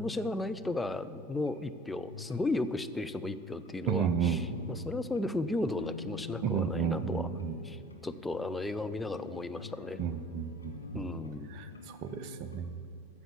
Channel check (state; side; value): normal; both; correlation 0.52